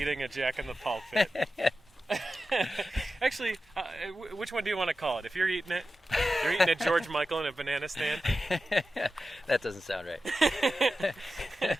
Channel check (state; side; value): normal; both; correlation 0.93